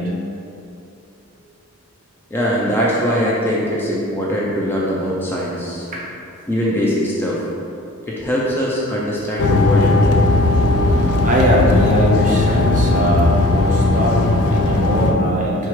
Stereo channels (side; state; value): both; normal; correlation 0.49